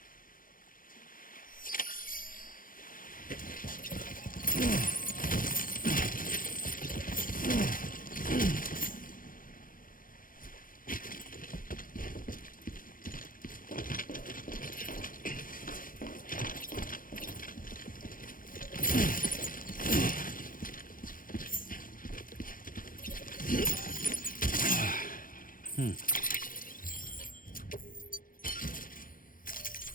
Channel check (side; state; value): right; late; 0.40 ms